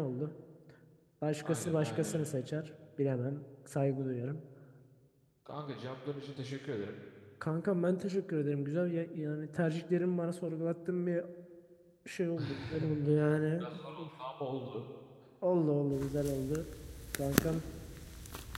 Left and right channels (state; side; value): identical; both; correlation 1.00